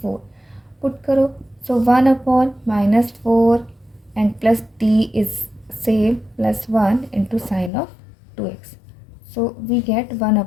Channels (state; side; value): drops out; right; at 7.7 s